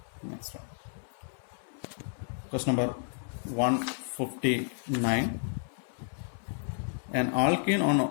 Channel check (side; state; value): right; silent; 57 dB below the other